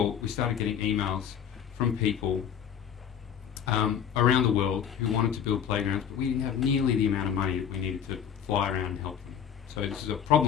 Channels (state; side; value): quieter; right; 8.7 dB